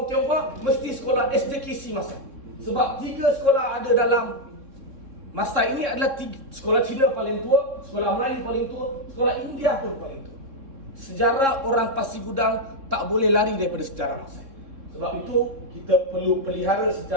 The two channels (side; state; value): left; late; 3.6 ms